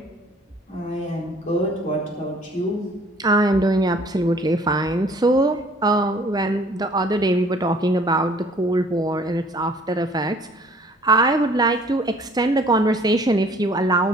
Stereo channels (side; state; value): both; normal; correlation 0.55